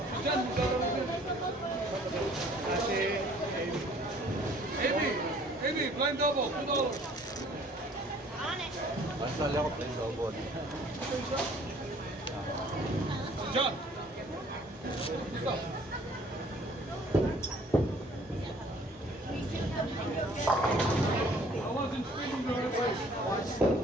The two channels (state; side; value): normal; both; correlation 0.56